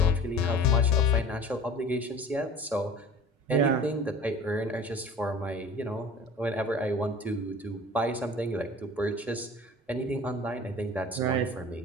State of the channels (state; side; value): normal; both; correlation 0.41